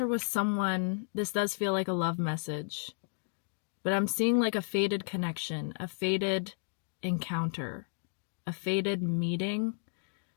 with someone, this does feel like a love message, but I'm seeing like a faded connection, a faded encounter, a faded meeting.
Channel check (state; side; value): silent; right; digital silence